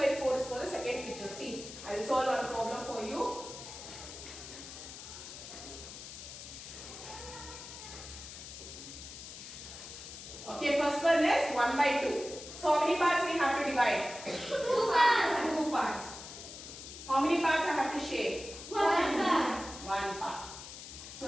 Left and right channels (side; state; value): left; noise; hiss, 12 dB below the sound